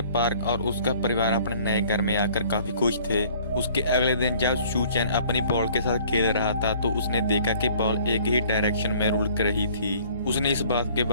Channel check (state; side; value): inverted; both; correlation -0.55